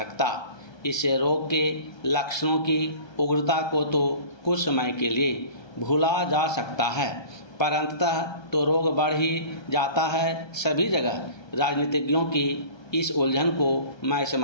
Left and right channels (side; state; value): right; late; 1.2 ms